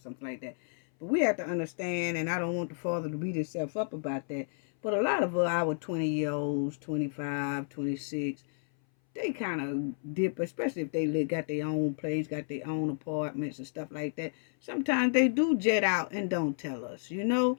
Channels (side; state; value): right; silent; 57 dB below the other